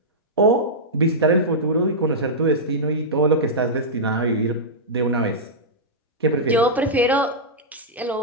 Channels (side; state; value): both; normal; correlation -0.11